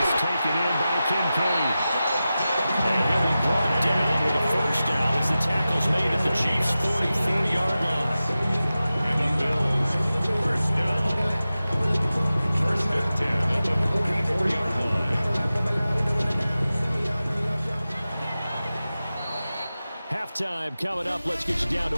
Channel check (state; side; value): inverted; both; correlation -0.94